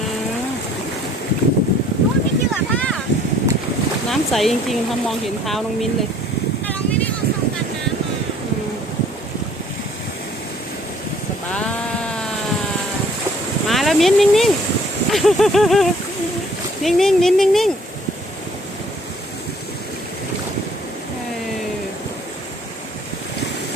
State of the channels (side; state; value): both; normal; correlation 0.58